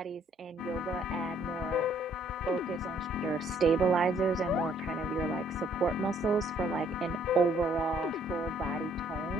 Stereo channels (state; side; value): normal; both; correlation 0.64